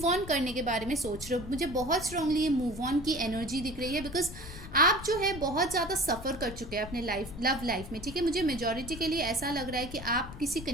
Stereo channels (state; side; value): noise; left; rumble, 12 dB below the sound